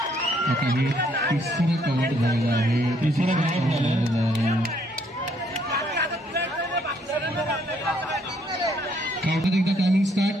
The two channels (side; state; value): both; normal; correlation 0.68